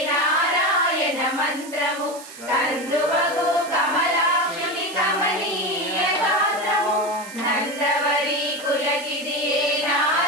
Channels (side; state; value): right; noise; hiss, 16 dB below the sound